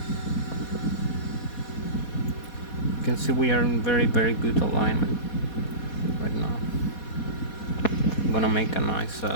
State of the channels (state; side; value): late; right; 4.2 ms